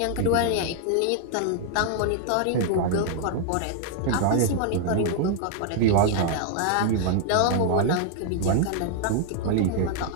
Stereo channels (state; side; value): different; both; correlation 0.00